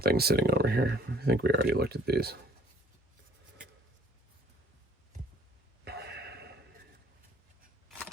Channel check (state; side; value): normal; both; correlation 0.56